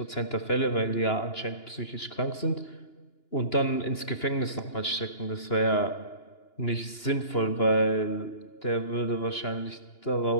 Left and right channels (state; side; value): late; right; 2.9 ms